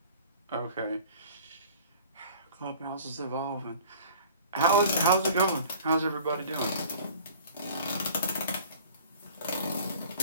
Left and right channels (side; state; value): both; inverted; correlation -0.46